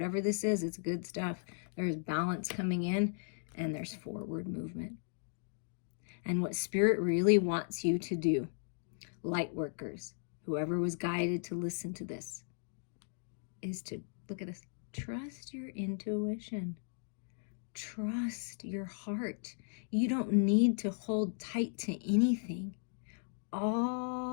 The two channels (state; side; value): silent; right; digital silence